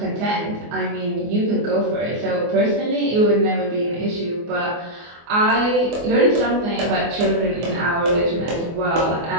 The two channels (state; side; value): late; left; 24 ms